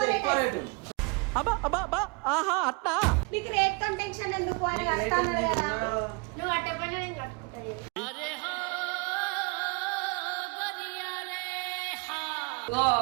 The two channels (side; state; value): left; quieter; 31.0 dB